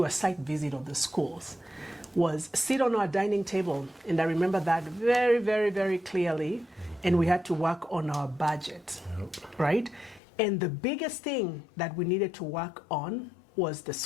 a site visit of the schools was sit on our dining table. And I remember that very, very, very clearly. And we had to work on our budget, right? And the biggest thing that we needed to work on was the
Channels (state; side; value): drops out; right; at 10.2 s